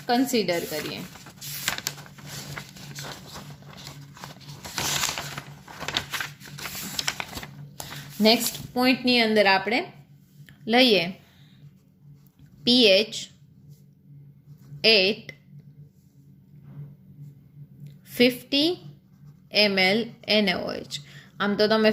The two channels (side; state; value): both; identical; correlation 1.00